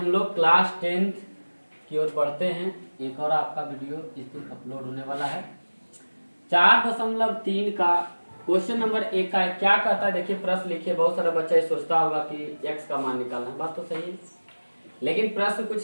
लोग क्लास 10th की ओर बढ़ते हैं। एक और आपका वीडियो इस दिन अपलोड होने वाला है। 4.3 का क्वेश्चन नंबर 1 का क्या कहता है, देखिए प्रश्न लिखिए। बहुत सारा बच्चा ये सोचता होगा कि x का मान निकालना है, बात तो सही है, लेकिन प्रश्न कुछ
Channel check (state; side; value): inverted; both; correlation -1.00